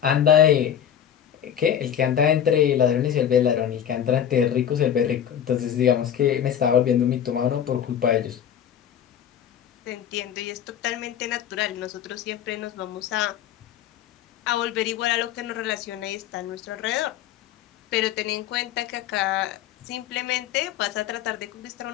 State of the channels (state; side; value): quieter; right; 9.5 dB